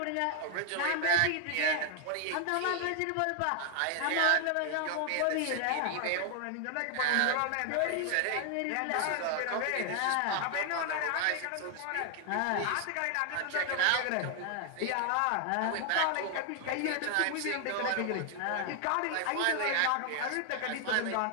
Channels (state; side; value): different; both; correlation 0.00